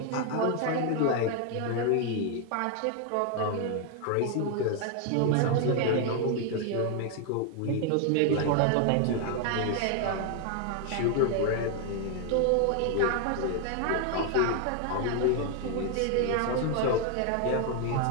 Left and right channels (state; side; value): different; both; correlation 0.00